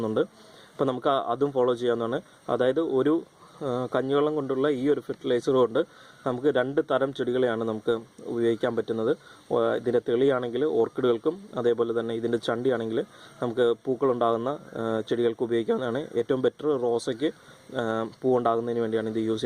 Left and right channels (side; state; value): both; identical; correlation 1.00